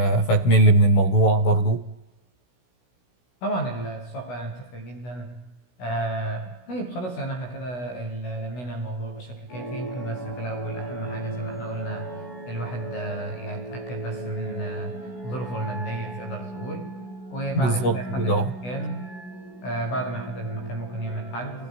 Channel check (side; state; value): right; late; 16 ms